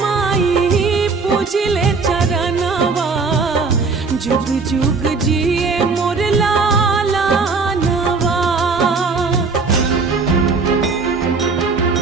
माई पूजिले चरणवा जुग जुग जिए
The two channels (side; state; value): left; quieter; 4.4 dB